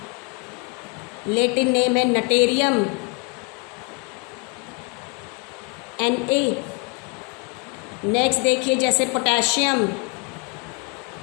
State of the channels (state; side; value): quieter; right; 33.6 dB